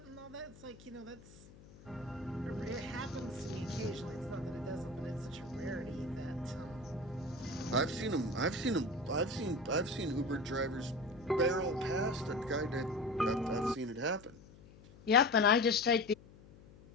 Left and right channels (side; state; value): left; noise; hum, 21 dB below the sound